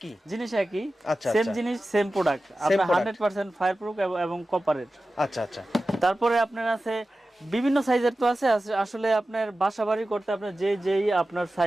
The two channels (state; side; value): normal; both; correlation 0.95